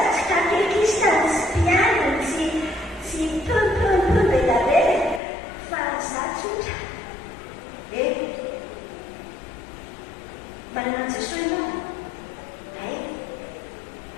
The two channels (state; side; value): drops out; right; at 5.2 s